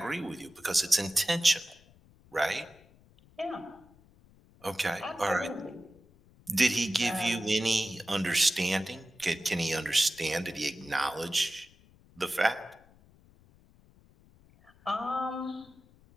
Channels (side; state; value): left; noise; rumble, 28 dB below the sound